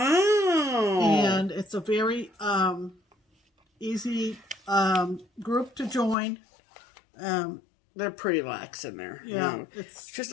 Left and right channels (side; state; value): right; drops out; at 6.2 s